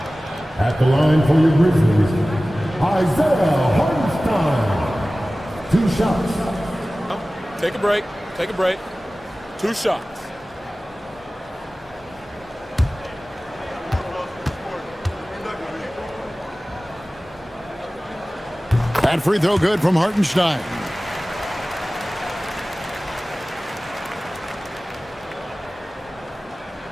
At the line for your Grizzlies, Isaiah Hartenstein. 2 shots. Take a break. Take a break. 2 shots. That free throw good from Hartenstein.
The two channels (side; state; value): both; normal; correlation 0.97